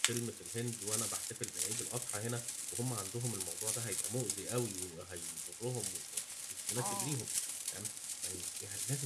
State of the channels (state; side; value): identical; both; correlation 1.00